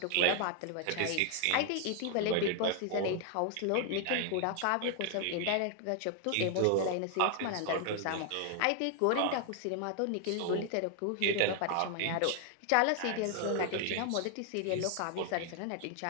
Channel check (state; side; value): different; both; correlation 0.00